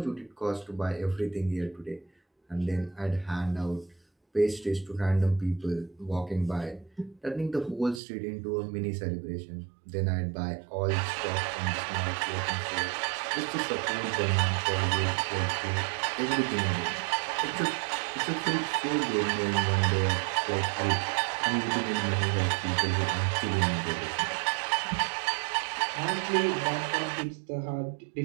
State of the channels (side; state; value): left; drops out; at 8.0 s